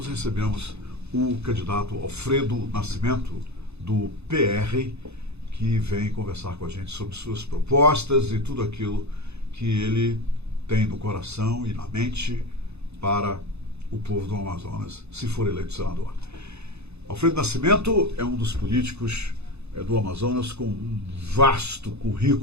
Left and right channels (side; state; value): left; late; 0.80 ms